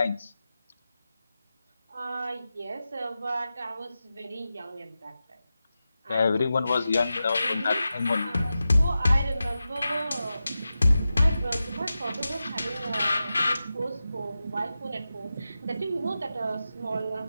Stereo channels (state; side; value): inverted; both; correlation -0.92